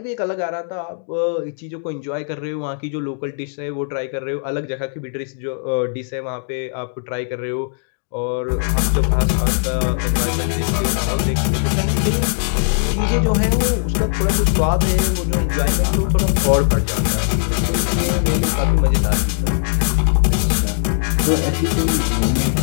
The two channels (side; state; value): right; silent; digital silence